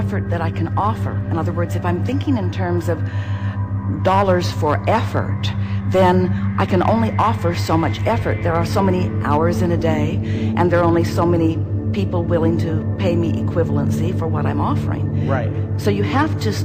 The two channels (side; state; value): both; identical; correlation 1.00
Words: that I can offer. In other words, if I'm thinking in terms of dollars for effort, then I can only offer so much effort. There are so many hours in a day, and there are only so many people willing to pay me equivalency for what I'm offering. Right. So you have to